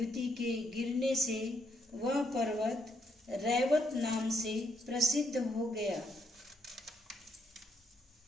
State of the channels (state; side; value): normal; both; correlation 0.75